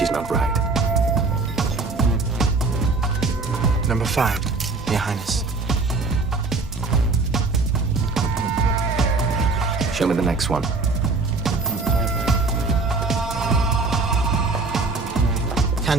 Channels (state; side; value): quieter; left; 3.8 dB